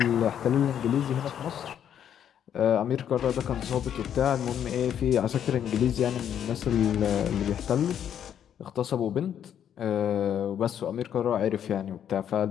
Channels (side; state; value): right; quieter; 9.4 dB